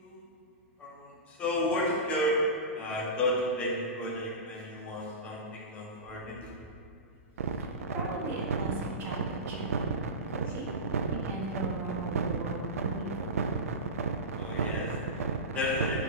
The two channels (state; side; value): normal; both; correlation -0.19